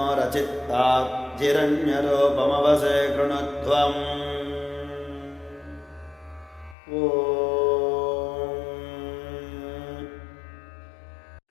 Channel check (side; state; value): right; drops out; at 6.8 s